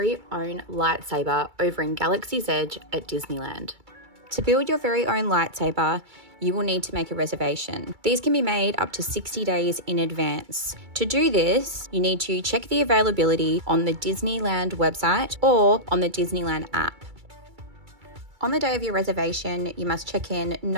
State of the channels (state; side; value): late; left; 2.3 ms